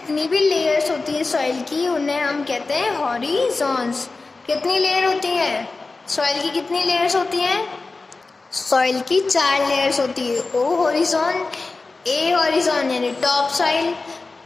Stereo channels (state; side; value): quieter; right; 3.7 dB